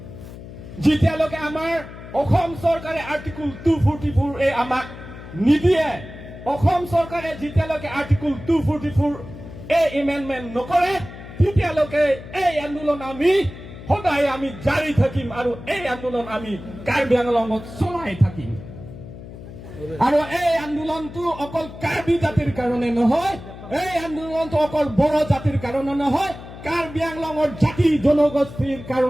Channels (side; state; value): left; noise; hum, 14 dB below the sound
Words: যেতিয়ালৈকে আমাৰ অসম চৰকাৰে আৰ্টিকল 244A আমাক নিদিয়ে, অসম চৰকাৰে যেতিয়ালৈকে আৰ্টিকল 244A এমেণ্ডমেণ্ট নকৰে তেতিয়ালৈকে এই আন্দোলন আমি সদায় আমি জাৰি থাকিম আৰু এই আন্দোলন আমি কাৰ্বি আংলঙত চলাই থাকিম। আৰু এই আন্দোলনটো অকল কাৰ্বি জাতিৰ কাৰণে নহয়, এই আন্দোলনটো অকল বড়ো জাতিৰ কাৰণে নহয়, কাৰ্বি আংলঙৰ জাতি জনগোষ্ঠীৰ